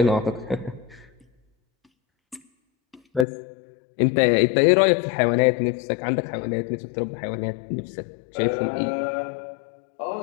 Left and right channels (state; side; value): drops out; right; at 3.2 s